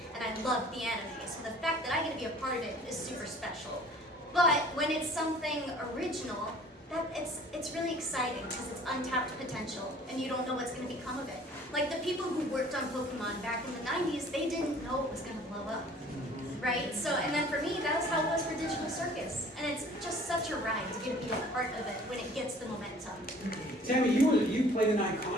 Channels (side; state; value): both; normal; correlation 0.51